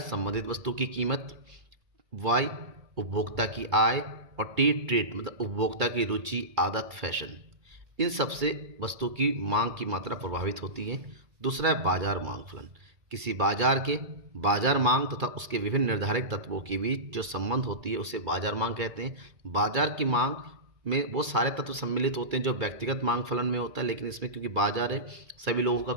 संबंधित वस्तु की कीमत, y उपभोक्ता की आय और t ट्रेड मतलब उपभोक्ता की रुचि, आदत, फैशन। इन सबसे वस्तु की मांग की मात्रा प्रभावित होती है। दूसरा है बाजार मांग फलन। किसी बाजार के बाजार मांग तथा उसके विभिन्न निर्धारित तत्वों के बीच जो संबंध होती है उसे बाजार मांग कहते हैं। बाजार की मांग में वो सारे तत्व सम्मिलित होते हैं जो व्यक्तिगत मांग फलन में होता है, लेकिन इसमें क्योंकि बाजार है सभी लोगों का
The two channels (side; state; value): left; late; 2.3 ms